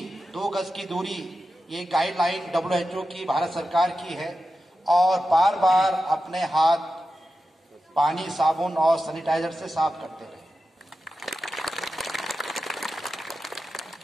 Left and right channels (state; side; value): normal; both; correlation 0.91